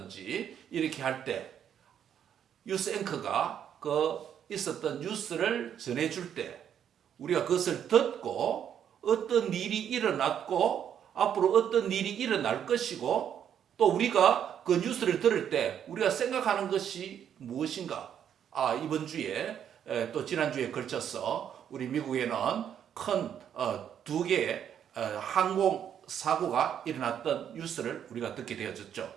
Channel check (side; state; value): left; quieter; 9.1 dB